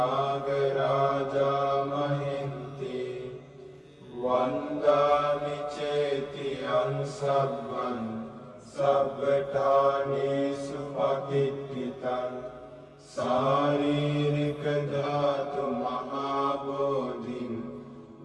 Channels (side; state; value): both; identical; correlation 1.00